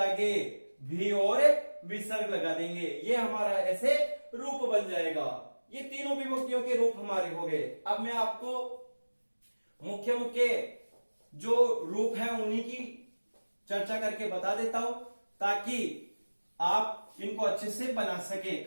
भी और विसर्ग लगा देंगे। ये हमारा ऐसे रूप बन जाएगा। ये तीनों विभक्तियों के रूप हमारे हो गए। अब मैं आपको मुख्य मुख्य जो रूप है उन्हीं की चर्चा करके बता देता हूं, ताकि आप इनको अच्छे से बना सके।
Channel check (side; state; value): both; inverted; correlation -1.00